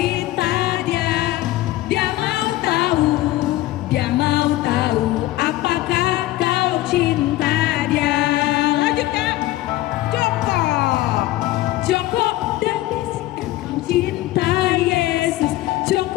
Dia. Dia mau tahu apakah kau cinta Dia. Lanjut Kak, jongkok dan bisikan kau cinta Yesus,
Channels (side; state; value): right; quieter; 16.5 dB